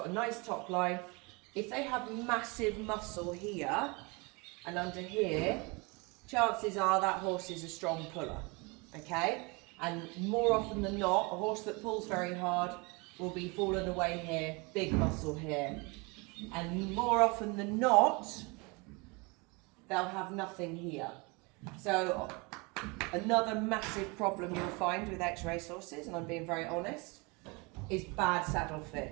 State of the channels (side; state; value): left; quieter; 28.3 dB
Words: a nice top line. If they have massive muscle here and under here, chances are that horse is a strong puller, okay? And more often than not, a horse that pulls very hard will be fallen away here, big muscle here. And more often than not, they'll have nothing here. So another massive problem you'll find with ex-racehorses, and I'm being very honest, is bad saddle